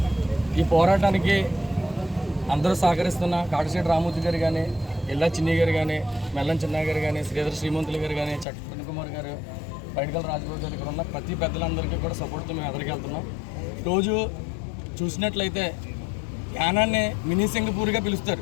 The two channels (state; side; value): drops out; right; at 8.5 s